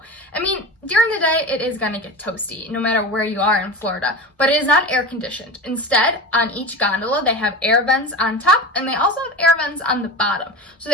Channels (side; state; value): both; normal; correlation 0.29